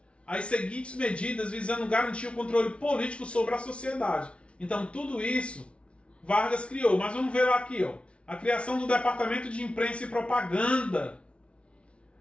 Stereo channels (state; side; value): late; right; 0.060 ms